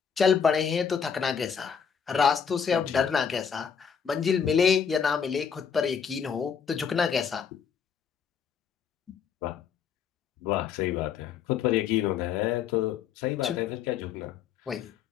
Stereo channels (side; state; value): right; quieter; 7.0 dB